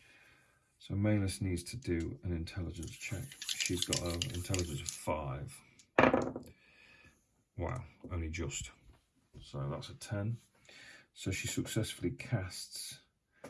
So Malus needs to do an intelligence check. She's got an intelligence of 5. Wow, only just. So that's a 10. So she successfully casts.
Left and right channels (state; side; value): identical; both; correlation 1.00